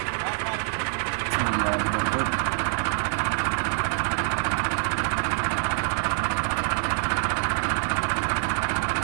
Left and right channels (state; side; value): silent; left; 57 dB below the other